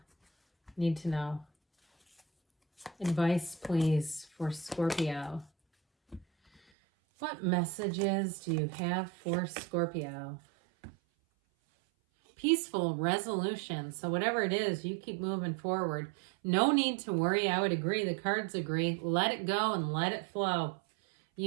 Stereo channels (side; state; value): left; drops out; at 6.6 s